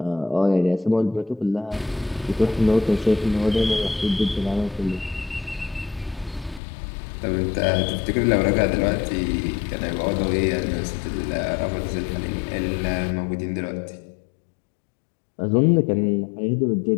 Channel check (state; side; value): drops out; right; at 6.6 s